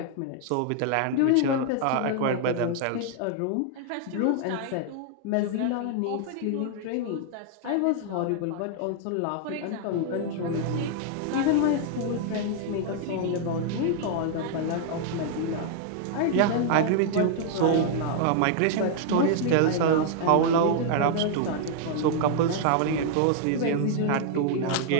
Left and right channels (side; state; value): both; different; correlation 0.00